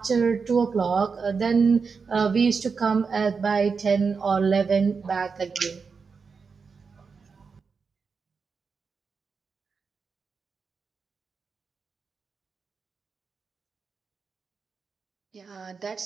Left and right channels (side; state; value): left; quieter; 5.2 dB